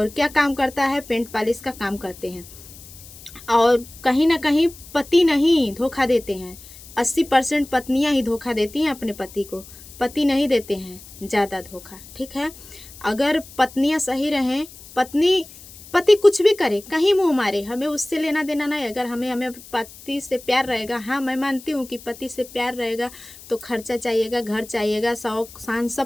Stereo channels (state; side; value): noise; left; hiss, 19 dB below the sound